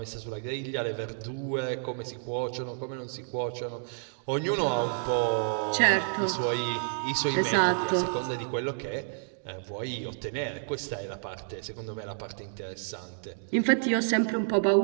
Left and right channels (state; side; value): silent; left; digital silence